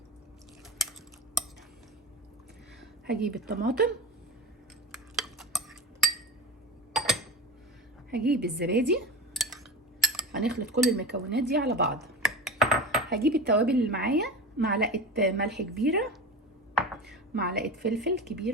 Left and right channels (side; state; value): both; normal; correlation 0.28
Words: هجيب الطماطم، هجيب الزبادي. هنخلط كل المكونات دي على بعض. هجيب التوابل اللي معايا: معلقه ملح كبيره، معلقه فلفل